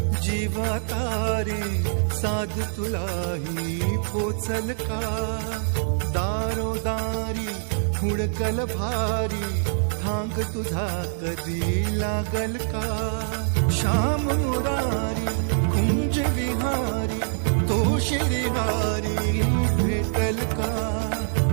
जीवा तारे साध तुलाही पोचल का दारोदारी हुडकल भारी थांग तुझा कधी लागल का श्याम मुरारी कुंज विहारी तो श्रीहारी भेटल का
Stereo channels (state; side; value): silent; left; 62 dB below the other